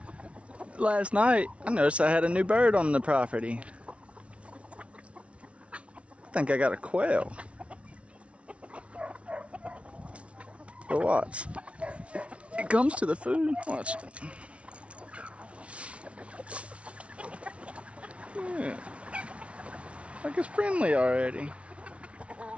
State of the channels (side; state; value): left; late; 0.062 ms